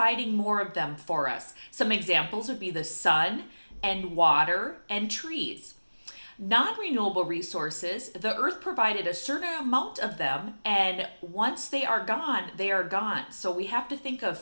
more of them for us. Some examples would be the sun and water and trees. Non-renewable resources, the earth provided a certain amount of them, and once they are gone, they are gone. So we have to think of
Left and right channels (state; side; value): inverted; both; correlation -1.00